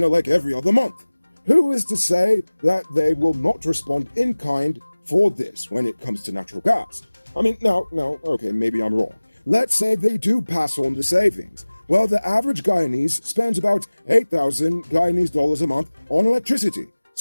like every other month. Who is to say that they will not respond in kind for this when it comes to natural gas? I mean, no, okay, maybe I'm wrong. Let's say they do pass on the savings. Well, the average Guyanese spends about 8,000 Guyanese dollars a month on electricity.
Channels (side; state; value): both; inverted; correlation -1.00